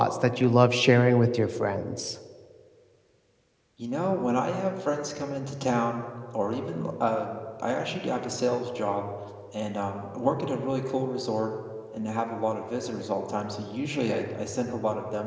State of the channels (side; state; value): both; identical; correlation 1.00